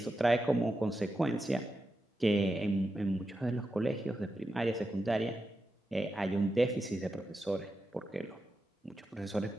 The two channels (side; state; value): both; normal; correlation 0.88